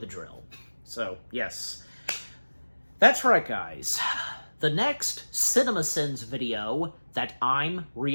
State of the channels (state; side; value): inverted; both; correlation -1.00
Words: drill. So, yes. That's right, guys. The next CinemaSins video that I'm